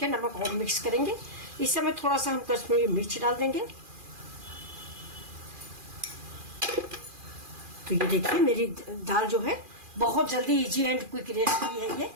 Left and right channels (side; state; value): left; late; 2.4 ms